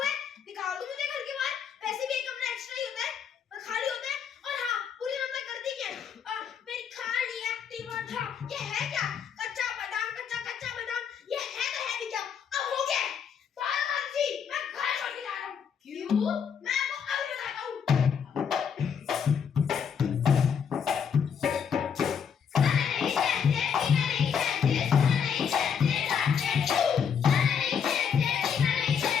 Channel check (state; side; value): quieter; right; 7.3 dB